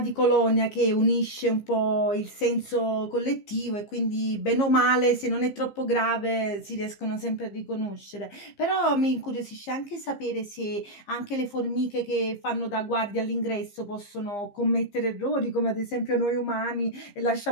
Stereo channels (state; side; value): late; right; 15 ms